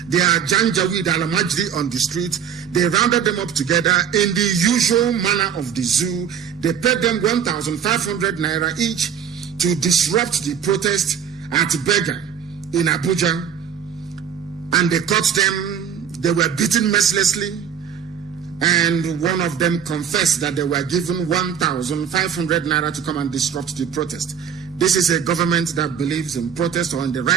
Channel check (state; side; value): quieter; left; 7.9 dB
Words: their Janjaweed Alamajri on the street. They rounded them up together in the usual manner of the zoo. They paid them 1,500 naira each to disrupt the protest at Bega in Abuja. And they caught them. They were beaten mercilessly. And one of them confessed that they were given 1,500 naira to come and disrupt the protest. This is a government that believes in protest or in the